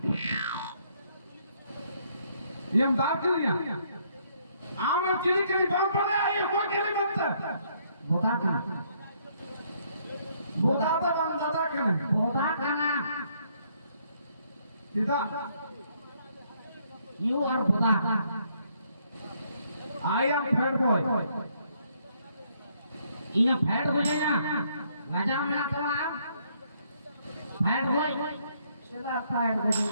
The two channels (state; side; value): inverted; both; correlation -0.69